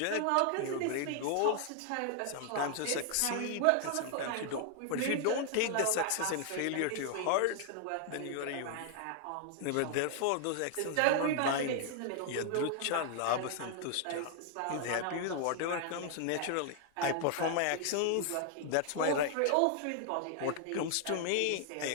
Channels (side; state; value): both; different; correlation 0.00